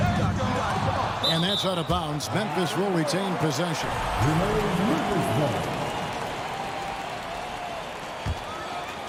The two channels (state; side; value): identical; both; correlation 1.00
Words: And that's out of bounds. Memphis will retain possession.